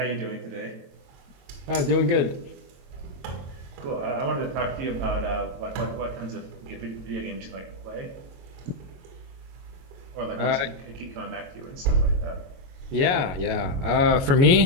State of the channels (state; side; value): late; left; 22 ms